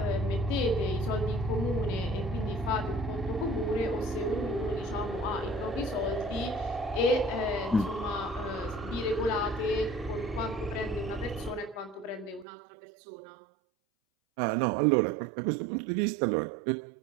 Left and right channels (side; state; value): left; drops out; at 12.5 s